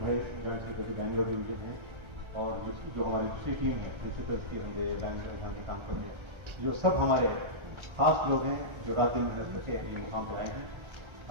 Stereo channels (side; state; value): left; late; 1.3 ms